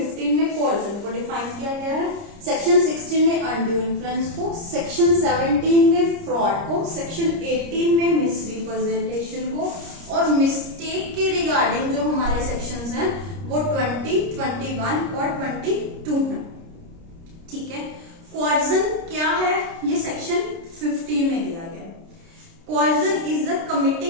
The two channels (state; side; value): late; left; 30 ms